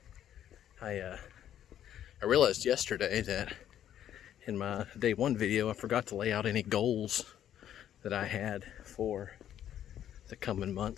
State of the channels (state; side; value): quieter; right; 10.7 dB